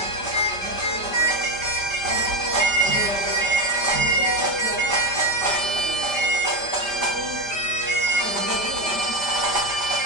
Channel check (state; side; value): late; right; 5.0 ms